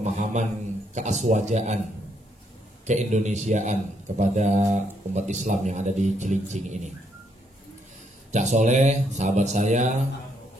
keaswajaan, keindonesiaan kepada umat Islam yang ada di Cilincing ini. Cak Soleh, sahabat saya,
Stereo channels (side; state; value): both; normal; correlation 0.74